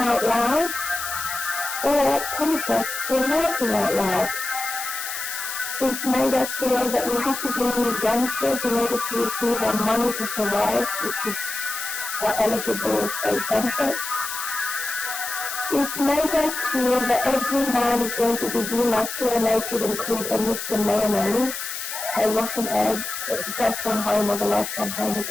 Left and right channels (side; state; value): left; noise; hiss, 6 dB below the sound